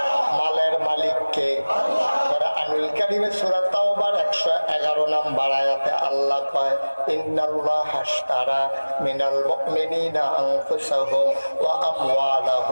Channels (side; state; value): both; inverted; correlation -1.00